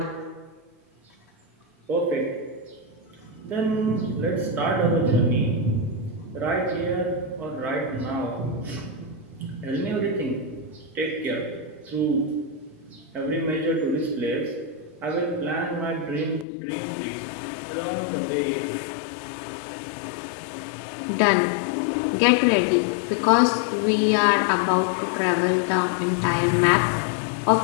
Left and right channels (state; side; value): drops out; right; at 16.4 s